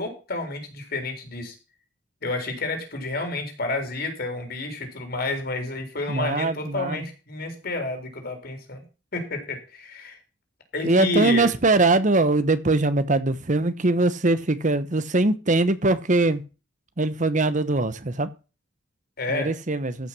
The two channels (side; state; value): both; normal; correlation 0.34